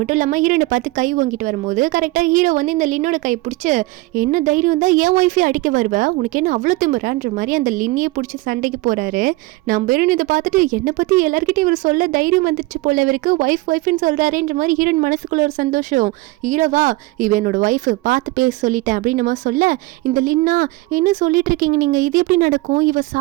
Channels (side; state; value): left; quieter; 21.3 dB